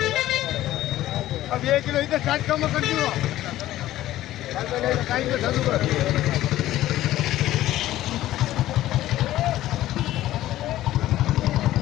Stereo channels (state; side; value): quieter; right; 14.5 dB